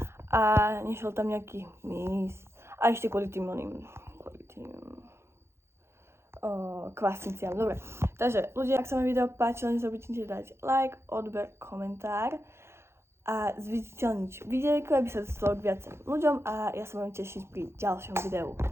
a nešiel tam nejaký mys. A ešte kvôli tým kvasniciam. Dobre, takže ľudia, ak sa vám video páčilo, nezabudnite dať like, odber, komentár a zviditeľniť videjko, aby sa dostalo k viacerým ľuďom a ja sa budem tešiť pri ďalšom videu.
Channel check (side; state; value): left; late; 0.12 ms